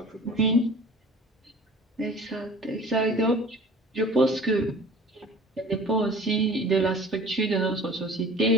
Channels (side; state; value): both; normal; correlation 0.44